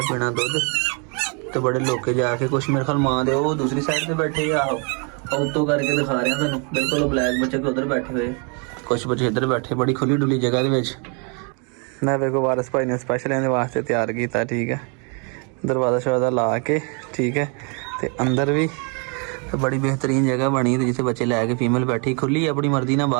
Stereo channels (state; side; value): quieter; left; 36.5 dB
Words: ਪੀਣਾ ਦੁੱਧ ਤੇ ਬੜੇ ਲੋਕੇ ਜਾ ਕੇ ਕੁਛ ਮੇਰੇ ਖਿਆਲ ਮਾਂ ਦੇ ਉਹ ਦੂਸਰੀ ਸਾਈਡ ਤੇ ਬੈਠੇ ਆ। ਉੱਤੋਂ ਕਰਕੇ ਦਿਖਾ ਰਿਹਾ ਤੁਹਾਨੂੰ ਬਿਲਕੁਲ। ਬਲੈਕ ਬੱਚੇ ਕਿ ਉੱਧਰ ਬੈਠੇ ਹੋਏ, ਕੁਛ ਬੱਚੇ ਇੱਧਰ ਬੈਠੇ, ਬੜੀ ਖੁੱਲੀ ਡੁੱਲੀ ਜਗ੍ਹਾ ਦੇ ਵਿੱਚ। ਮੈਂ ਵੇਖੋ ਵਾਰਸ ਭਾਈ ਨੇ ਸਪੈਸ਼ਲ ਇਹਦੇ ਵਾਸਤੇ ਤਿਆਰ ਕੀਤਾ। ਠੀਕ ਹੈ, ਦਰਵਾਜ਼ਾ ਸ਼ਰਵਾਜ਼ਾ ਲਾ ਕੇ। ਠੀਕ ਹੈ, ਤੇ ਅੰਦਰ ਵੀ ਬੜੀ ਬਿਹਤਰੀਨ ਜਗ੍ਹਾ ਬਣੀ ਤੇ ਜਿੱਥੇ ਬੱਚੇ ਲੈ ਕੇ ਫੀਮੇਲ ਬੈਠੀ ਖੁੱਲੀ ਆਪਣੀ ਮਰਜ਼ੀ ਨਾਲ